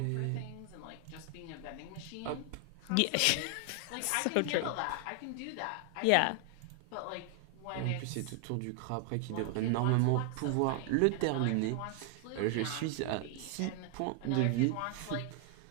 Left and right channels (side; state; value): both; different; correlation 0.00